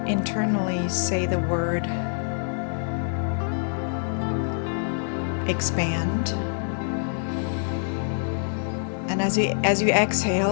internally say the word expand. And as you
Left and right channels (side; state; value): right; silent; digital silence